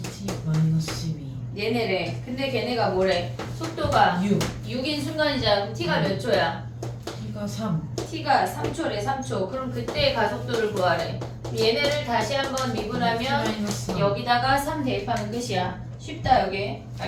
마이너스 12 얘네래. 근데 걔네가 뭐래? 속도가 6 6인 순간이잖아. 그럼 t가 몇 초야? t가 3 t가 3초래. 3초. 그럼 그때의 가속도를 구하래. 얘네를 다시 한번 미분하면 마이너스 3 여기다가 3 대입하면 끝이야. 쉽다 여기.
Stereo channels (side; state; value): both; identical; correlation 1.00